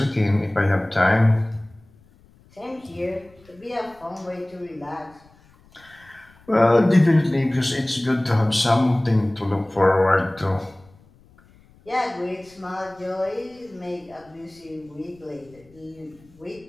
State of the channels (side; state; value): left; noise; rumble, 28 dB below the sound